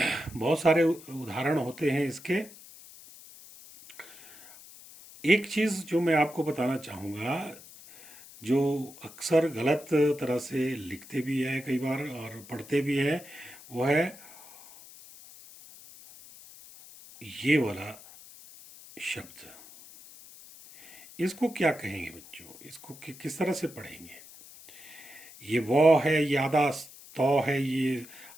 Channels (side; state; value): left; noise; hiss, 19 dB below the sound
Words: बहुत सारे उदाहरण होते हैं इसके। एक चीज़ जो मैं आपको बताना चाहूँगा, जो अक्सर गलत तरह से लिखते भी है कई बार और पढ़ते भी हैं, वो है ये वाला शब्द। इसको क्या कहेंगे बच्चों? इसको किस तरह से पढ़ेंगे? ये वो है, ये आधा तो है, ये